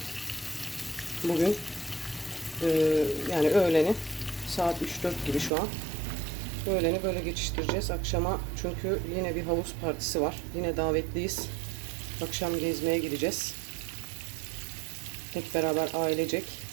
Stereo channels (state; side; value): drops out; left; at 5.5 s